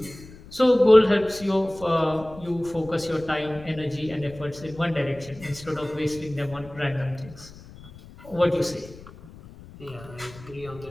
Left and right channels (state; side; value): noise; left; rumble, 19 dB below the sound